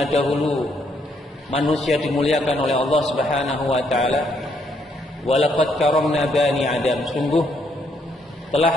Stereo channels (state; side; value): normal; both; correlation 0.72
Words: dahulu manusia dimuliakan oleh Allah Subhanahu wa taala. Walaqad karamna bani Adam, sungguh